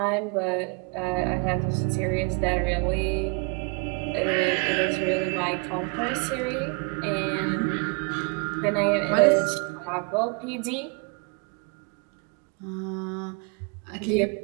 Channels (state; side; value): quieter; left; 32.4 dB